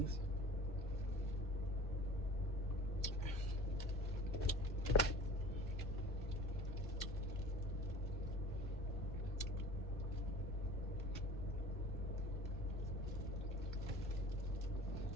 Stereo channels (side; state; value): both; normal; correlation 0.42